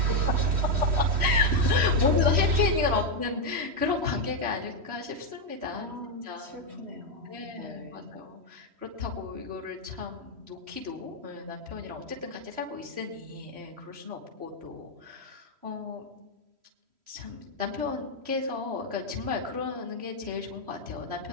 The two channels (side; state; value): left; late; 3.1 ms